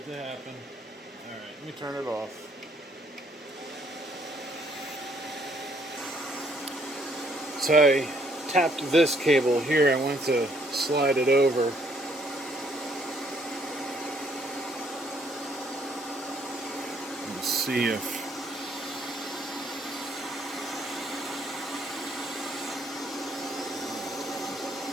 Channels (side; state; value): both; normal; correlation 0.67